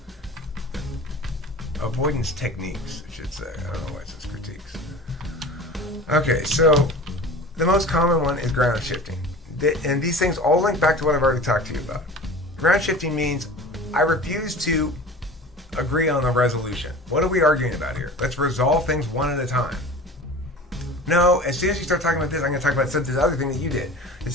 Avoidance techniques, I should say. I don't know why it says critiques. Okay, so the most common one is ground shifting. And these things all link back to what I've already talked to you about. Ground shifting means I refuse to agree on the resolution. What are we arguing about here? Let's resolve things one at a time. No, as soon as you start talking about this, I'm going to talk about this other thing that you did. It's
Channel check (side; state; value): both; normal; correlation 0.38